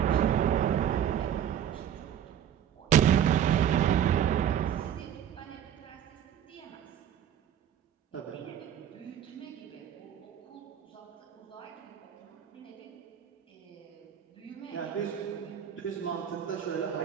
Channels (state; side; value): quieter; left; 9.7 dB